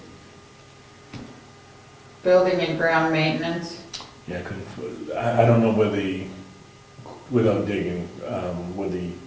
building and ground maintenance. Yeah, I don't know where without digging, where the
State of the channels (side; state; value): both; identical; correlation 1.00